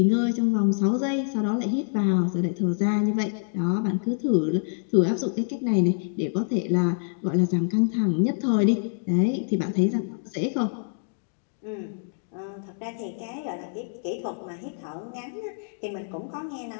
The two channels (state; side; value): silent; right; digital silence